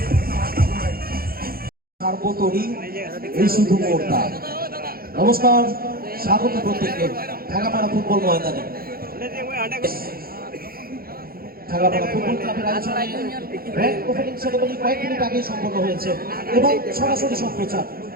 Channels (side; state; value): left; late; 0.43 ms